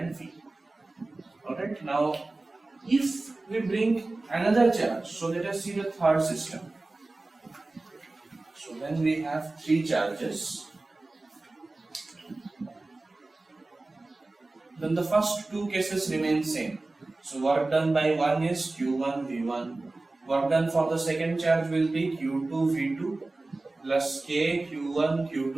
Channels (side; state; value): left; quieter; 3.1 dB